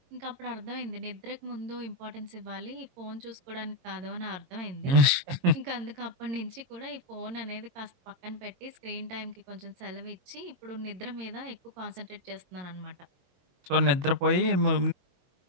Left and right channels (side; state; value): left; late; 22 ms